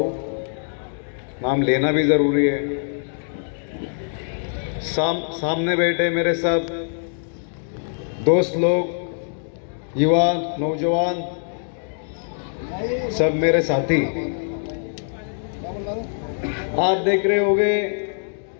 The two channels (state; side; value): silent; right; digital silence